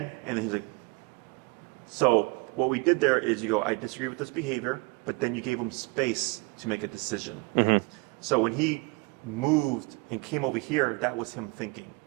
and then he's like, so what we did there is you go, I disagree with this behavior, but then you gave him space to make a decision. So when he moved and came over here, that was him thinking.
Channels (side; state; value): left; quieter; 27.7 dB